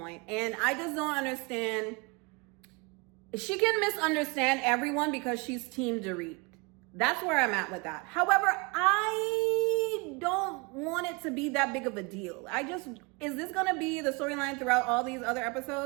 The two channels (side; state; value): left; quieter; 28.7 dB